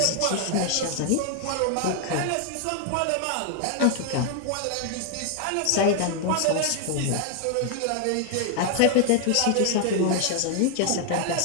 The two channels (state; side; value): different; both; correlation 0.00